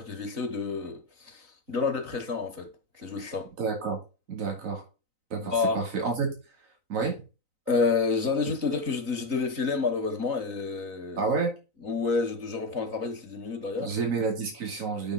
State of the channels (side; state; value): left; late; 3.9 ms